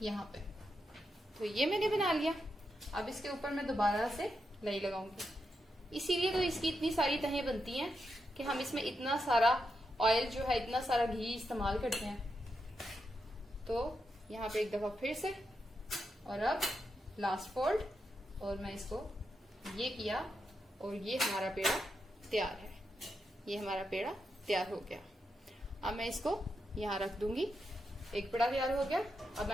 यहाँ पे। तो ये मैंने बना लिया। अब इसके ऊपर मैं दोबारा से लई लगाऊंगी। इसीलिए तो इसकी इतनी सारी तहें बनती हैं कि हम इसमें इतना सारा ऑयल जो है, इतना सारा घी इस्तेमाल करते हैं। तो यहाँ पे एक दफा फिर से, और अब लास्ट फोल्ड, और मैं इसको ये किया और ये हमारा पेड़ा तैयार है। ये हमारा पेड़ा तैयार हो गया। अब मैं इसको यहाँ रख दूंगी। एक पेड़ा तैयार हो गया। अब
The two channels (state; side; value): normal; both; correlation 0.85